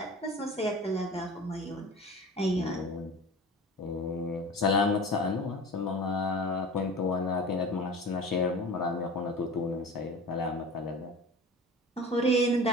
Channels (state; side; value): normal; both; correlation 0.37